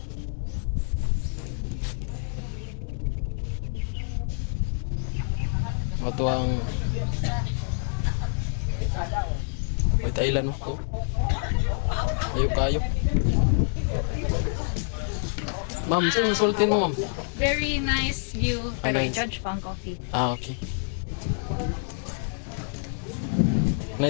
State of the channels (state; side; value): silent; right; 60 dB below the other